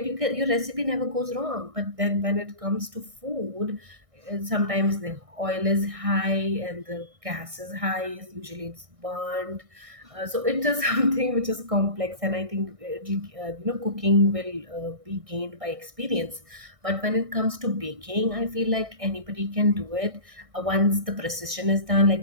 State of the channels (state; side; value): late; left; 1.6 ms